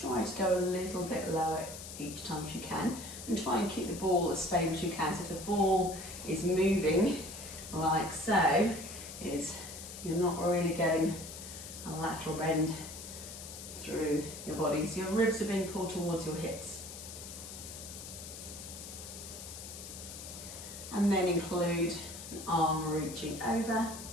to go a little bit lower each time if you can, and try and keep the ball as stable as you can. So if the ball is moving like so, you're not really getting a lateral bend through your body. So your ribs are being pulled towards your hips. And then include an arm reaching over.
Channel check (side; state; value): left; noise; hiss, 11 dB below the sound